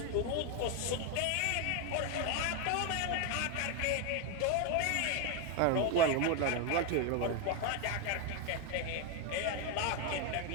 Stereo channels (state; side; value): different; both; correlation 0.01